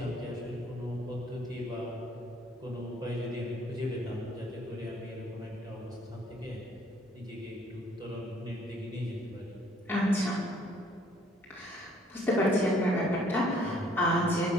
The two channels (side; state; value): both; normal; correlation 0.61